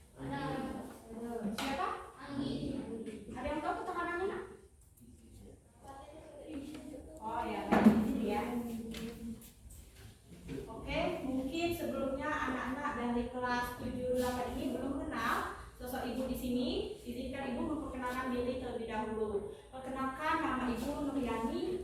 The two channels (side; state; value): both; identical; correlation 1.00